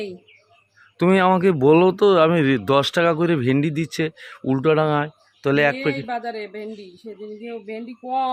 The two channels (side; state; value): both; identical; correlation 1.00